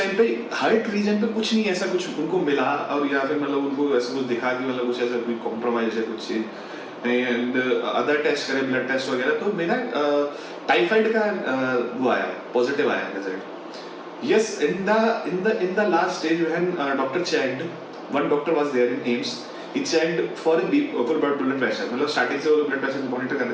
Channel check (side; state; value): both; identical; correlation 1.00